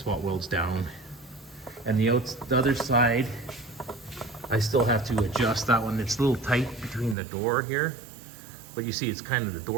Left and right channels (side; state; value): left; drops out; at 7.2 s